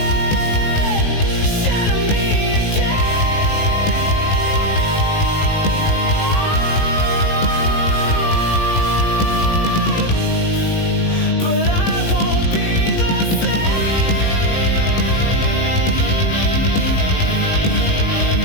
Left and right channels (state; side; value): late; right; 19 ms